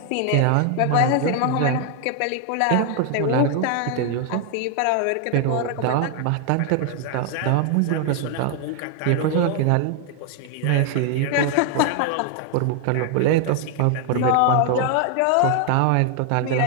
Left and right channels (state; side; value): different; both; correlation 0.00